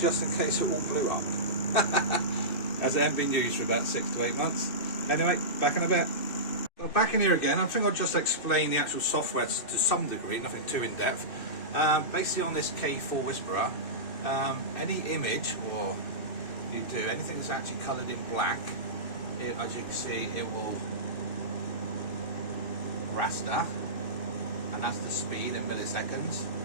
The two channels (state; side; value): late; right; 2.6 ms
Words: just in case it all blew up. As it hasn't been used for about 6 to 8 months. Anyway, back in a bit. Well, back in here again. I think I'll just explain the actual software to some degree, nothing too in depth. Basically on this K40 Whisperer, any image or you do anything that's actually coloured in black, as you can see, it will raster, and that's the speed in milliseconds.